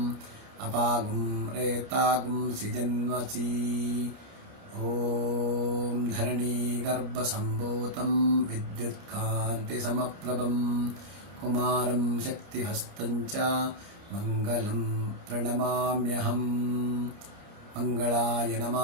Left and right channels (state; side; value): late; left; 29 ms